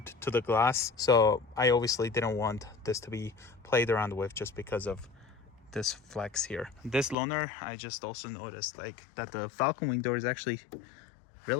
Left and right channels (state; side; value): drops out; right; at 7.2 s